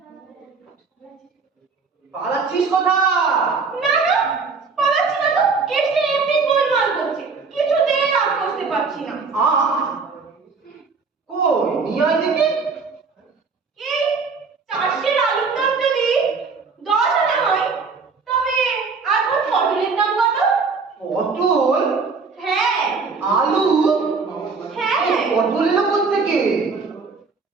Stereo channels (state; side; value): quieter; left; 4.7 dB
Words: পালাচ্ছিস কোথা? না না, পালাচ্ছি না তো, কেসটা এমনি গোলমাল করছে, কিছুতেই রাগ করতে পারছি না। কই নিয়ে আয় দেখি। এই চারশের আলুর দাম যদি 10 আনা হয়, তবে এখন পটলের দাম কত? পটল? হ্যাঁ। আলু? হ্যাঁ। এই পটল এলো কোত্থেকে?